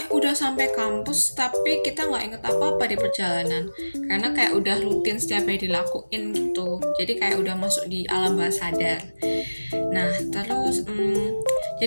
udah sampai kampus tapi kita nggak inget apa-apa di perjalanan karena kayak udah rutin setiap hari dilakuin gitu. Jadi kayak udah masuk di alam bawah sadar. Nah, terus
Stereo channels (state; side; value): inverted; both; correlation -1.00